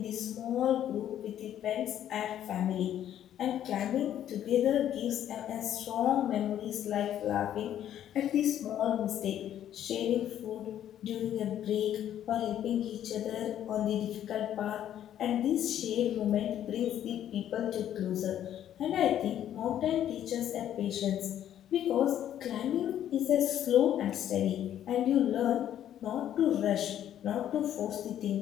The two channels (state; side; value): quieter; right; 10.9 dB